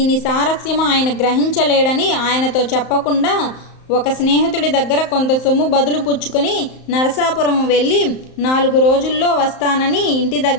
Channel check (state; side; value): late; right; 35 ms